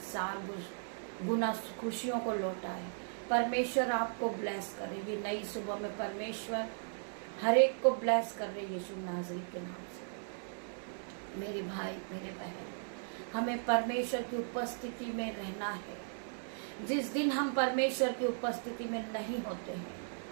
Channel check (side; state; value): left; silent; digital silence